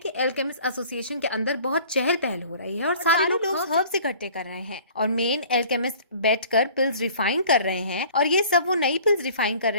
एल्केमिस्ट एसोसिएशन के अंदर बहुत चहल पहल हो रही है और सारे लोग हर्ब्स इकट्ठे कर रहे हैं और मेन एल्केमिस्ट बैठकर पिल्स रिफाइन कर रहे हैं और ये सब वो नई पिल्स रिफाइन कर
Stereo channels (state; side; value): inverted; both; correlation -0.49